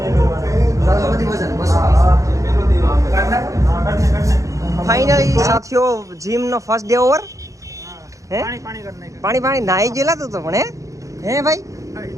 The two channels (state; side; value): late; left; 0.16 ms